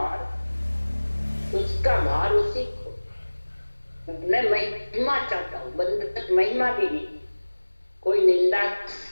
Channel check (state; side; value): inverted; both; correlation -1.00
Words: उसका भार उसी को। मैं महिमा चाहता हूँ, बंधक महिमा भी नहीं। कोई निंदा